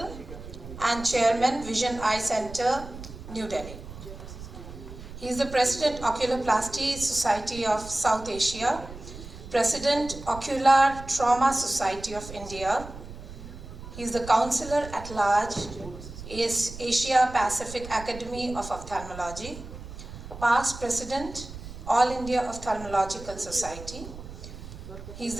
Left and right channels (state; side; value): noise; right; rumble, 13 dB below the sound